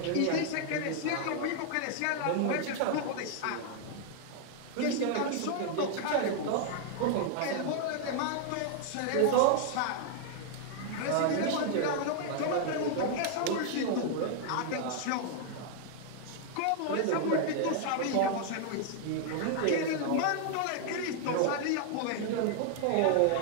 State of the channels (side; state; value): both; different; correlation 0.00